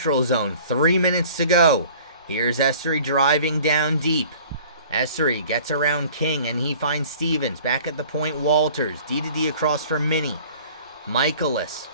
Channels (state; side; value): inverted; both; correlation -0.48